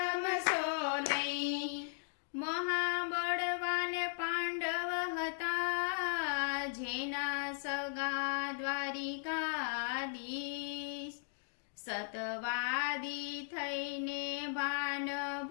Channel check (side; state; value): right; silent; digital silence